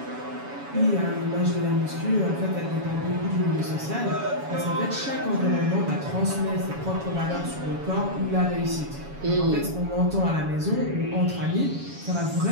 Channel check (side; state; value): left; late; 7.1 ms